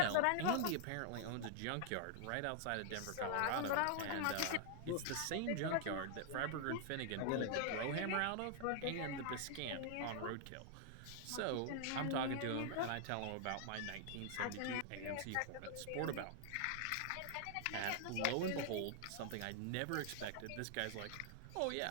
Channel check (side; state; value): both; different; correlation 0.00